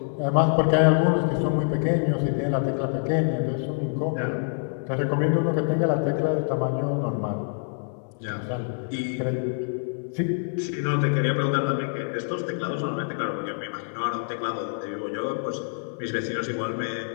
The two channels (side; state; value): right; silent; digital silence